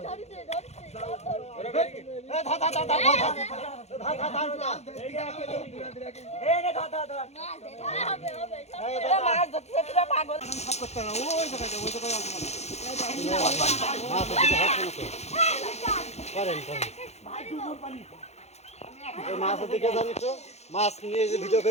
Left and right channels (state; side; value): late; right; 0.31 ms